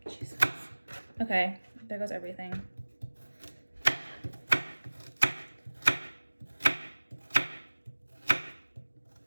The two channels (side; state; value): both; inverted; correlation -1.00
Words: Jesus. Okay, there goes everything.